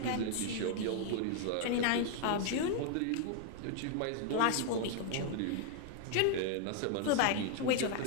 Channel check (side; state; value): both; different; correlation 0.00